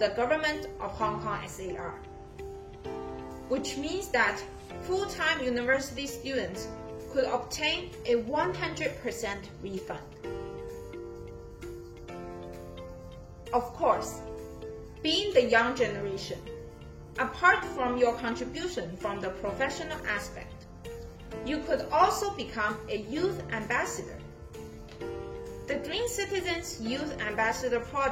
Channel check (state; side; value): identical; both; correlation 1.00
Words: Government of Hong Kong SAR, which means that full-time university students could obtain a 100% refund. Of course, being the young generation, apart from your contribution from the professional aspect, you could also become a youth ambassador. The Green Citizens Youth Ambassador